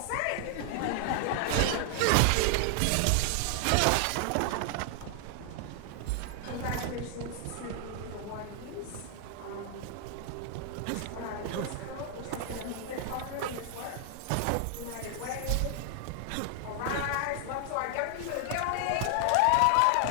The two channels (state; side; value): different; both; correlation 0.00